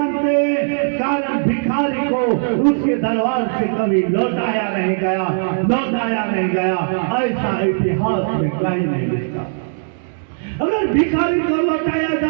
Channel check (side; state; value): left; silent; digital silence